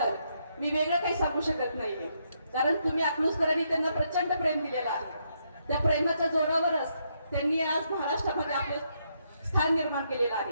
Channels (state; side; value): inverted; both; correlation -0.77